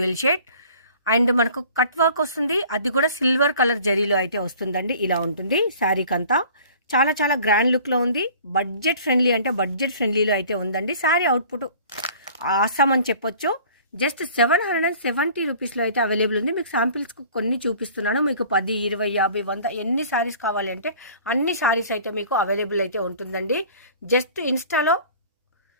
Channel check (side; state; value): both; inverted; correlation -0.48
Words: షేడ్. అండ్ మనకు కట్ వర్క్ వస్తుంది, అది కూడా సిల్వర్ కలర్ జరీలో అయితే వస్తుందండి. ఇలా ఉంటుంది శారీకి అంతా. చాలా గ్రాండ్ లుక్లో ఉంది. బడ్జెట్ ఫ్రెండ్లీలో అయితే ఉందండి. శారీ అవుట్పుట్ ఆసాం అని చెప్పొచ్చు. జస్ట్ 770 రూపీస్లో అయితే అవైలబుల్ ఉంది. మీకు శాంపిల్స్ కొన్ని చూపిస్తున్నాను. మీకు 10, 20, 50, 100 ఎన్ని శారీస్ కావాలి అంటే అన్ని శారీస్ అయితే మీకు అవైలబుల్ అయితే ఉంటుందండి. జస్ట్ ఇన్స్టాలో